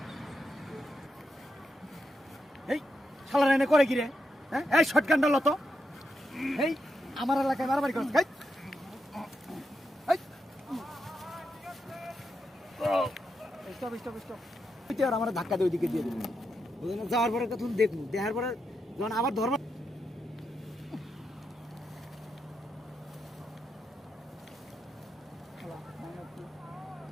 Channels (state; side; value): normal; both; correlation 0.84